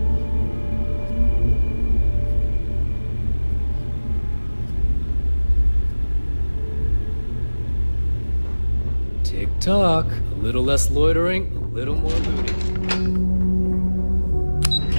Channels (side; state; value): both; inverted; correlation -1.00